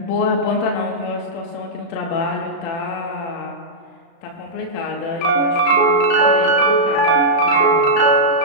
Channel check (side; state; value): right; late; 36 ms